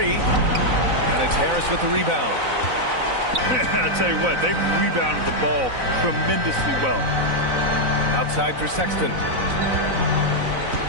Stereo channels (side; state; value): left; late; 4.0 ms